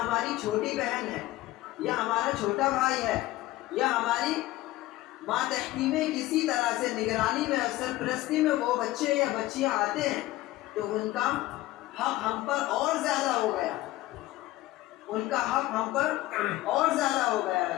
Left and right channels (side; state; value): right; quieter; 17.1 dB